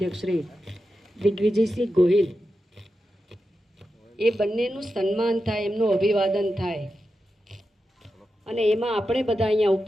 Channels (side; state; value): both; normal; correlation 0.90